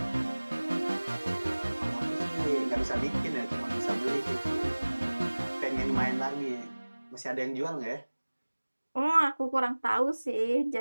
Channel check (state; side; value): inverted; both; correlation -1.00